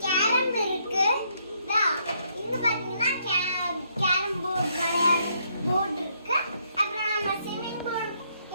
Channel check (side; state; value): both; inverted; correlation -0.72